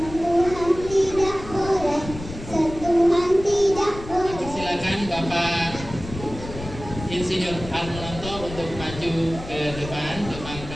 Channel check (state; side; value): noise; left; rumble, 12 dB below the sound